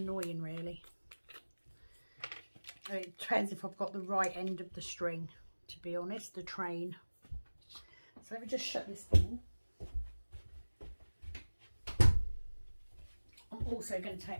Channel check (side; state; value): both; inverted; correlation -1.00